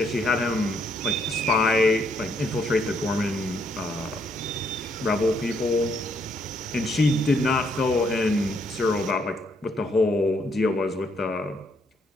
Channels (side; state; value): both; normal; correlation 0.72